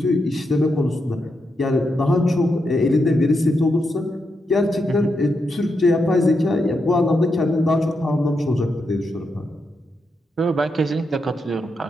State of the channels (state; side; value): normal; both; correlation 0.84